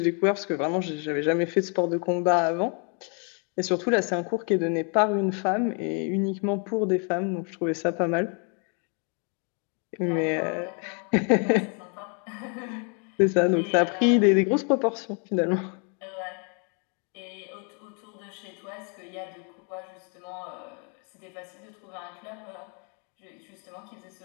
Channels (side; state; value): right; quieter; 38.8 dB